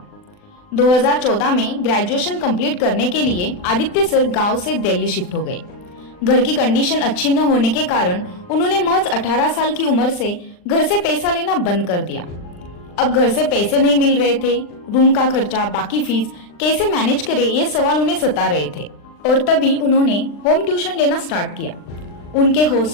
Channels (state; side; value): late; right; 39 ms